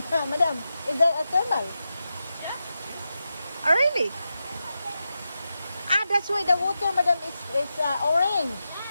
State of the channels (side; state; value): both; inverted; correlation -0.90